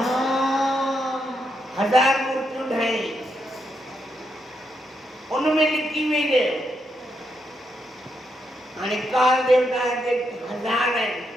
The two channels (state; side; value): normal; both; correlation 0.81